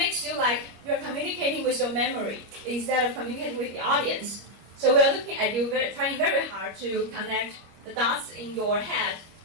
you like you're communicating with your memory instead of communicating with the audience. So we're looking at you trying very hard to connect the dots in your head,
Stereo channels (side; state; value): left; late; 25 ms